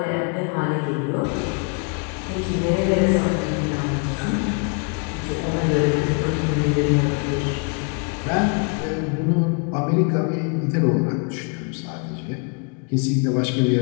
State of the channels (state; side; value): quieter; right; 38.2 dB